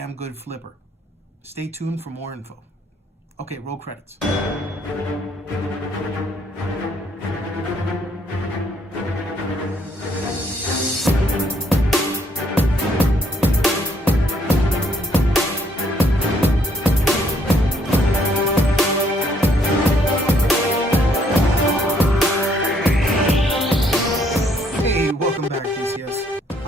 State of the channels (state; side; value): normal; both; correlation 0.68